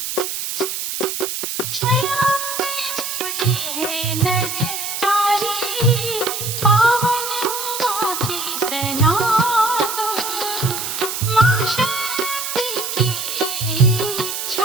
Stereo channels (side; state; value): right; noise; hiss, 4 dB below the sound